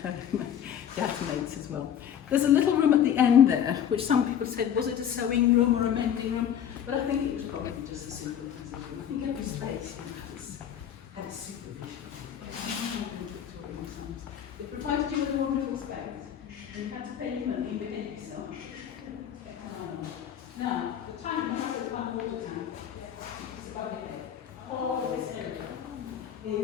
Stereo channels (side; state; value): right; quieter; 9.3 dB